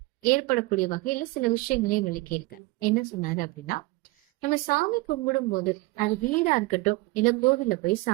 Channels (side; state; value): left; quieter; 22.2 dB